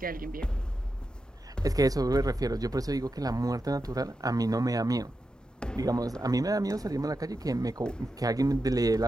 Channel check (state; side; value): normal; both; correlation 0.89